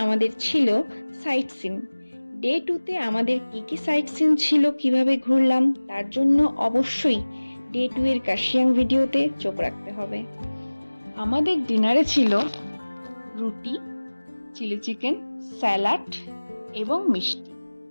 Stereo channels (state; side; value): inverted; both; correlation -1.00